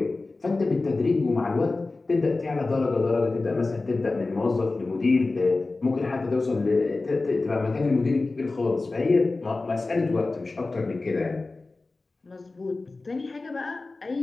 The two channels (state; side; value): quieter; right; 3.5 dB